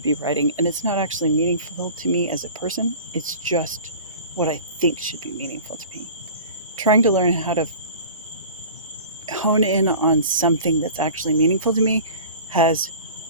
be writing, and it's not actually meaningful to me as a person. It's just what I think should be meaningful to me. Trying to learn how to hone in on something that's actually meaningful to me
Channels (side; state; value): both; inverted; correlation -0.40